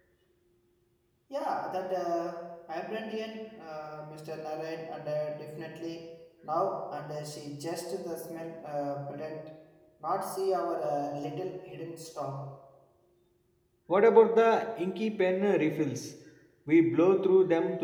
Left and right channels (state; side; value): identical; both; correlation 1.00